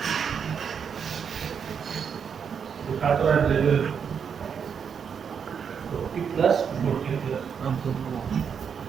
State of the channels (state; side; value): quieter; left; 7.0 dB